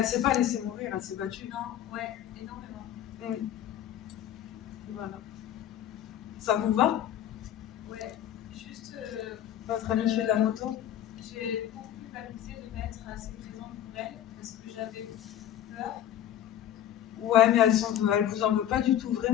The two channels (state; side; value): quieter; right; 11.1 dB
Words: s'est pas laissée mourir, elle s'est battue. Non, ouais, énormément. Voilà. Ça vous va? Ouais, juste. Votre amie fait de la moto? J'ai beaucoup culpabilisé de m'être assez présente pour elle parce que j'avais peur. Ouais, mais elle vous en veut pas du tout,